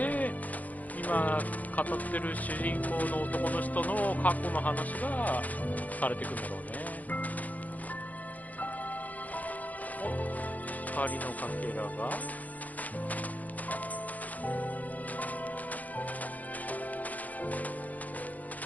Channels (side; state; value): right; late; 0.078 ms